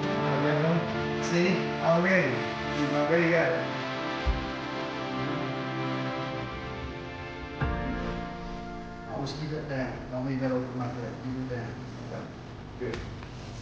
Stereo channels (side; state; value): both; identical; correlation 1.00